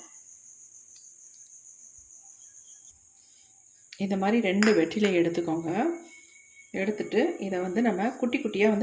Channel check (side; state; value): both; identical; correlation 1.00